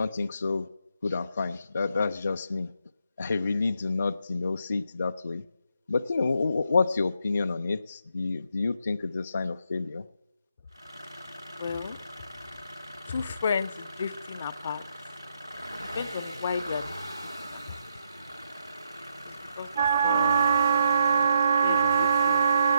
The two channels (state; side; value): inverted; both; correlation -0.77